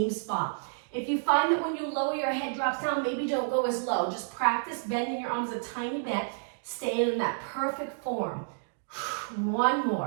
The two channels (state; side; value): silent; left; digital silence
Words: spot. If you find that when you lower your head drops down, maybe don't go as low. Just practice bending your arms a tiny bit, staying in that perfect form. 1